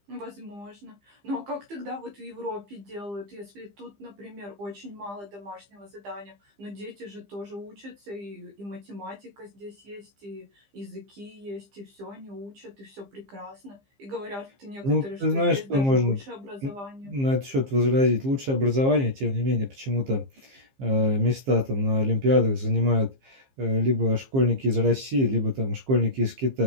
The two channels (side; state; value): left; late; 15 ms